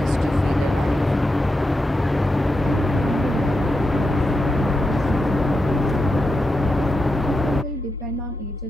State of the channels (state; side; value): normal; both; correlation 0.87